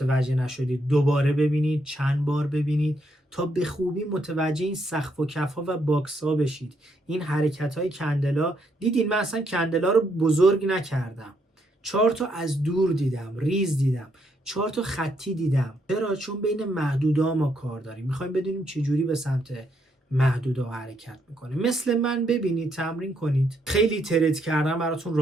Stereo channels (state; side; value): normal; both; correlation 0.75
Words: نشدید دوباره ببینید، چند بار ببینید تا به خوبی متوجه این سقف و کف ها و باکس ها بشید. این حرکت های کندلا، دیدین من اصلا کندلا رو بزرگ نکردم، چارت رو از دور دیدم، ریز دیدم، چارت رو خطی دیدم. چرا؟ چون بین محدودا ما کار داریم، میخوایم بدونیم چجوری به سمت محدودا حرکت میکنه. مثل من ببینید، تمرین کنید. خیلی ترید کردن براتون